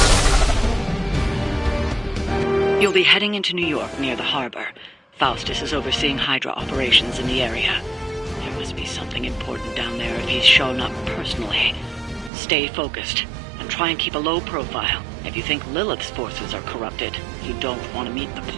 You'll be heading into New York near the harbor. Faustus is overseeing Hydra operations in the area. There must be something important down there if he's shown up personally. Stay focused, and try and keep a low profile. If you think Lilith's forces are corrupted, you don't want to meet the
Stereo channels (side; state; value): left; drops out; at 12.3 s